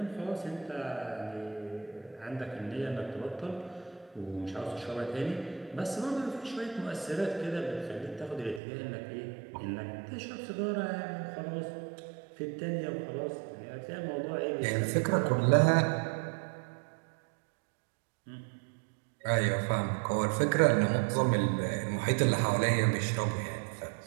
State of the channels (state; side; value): drops out; left; at 8.6 s